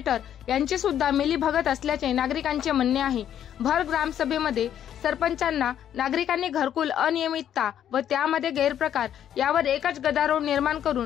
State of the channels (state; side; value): quieter; right; 10.1 dB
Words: यांची सुद्धा मिलीभगत असल्याचे नागरिकांचे म्हणणे आहे। भर ग्रामसभेमध्ये सरपंचांना नागरिकांनी घरकुल अनियमितता व त्यामध्ये गैरप्रकार यावर एकच गदारोळ निर्माण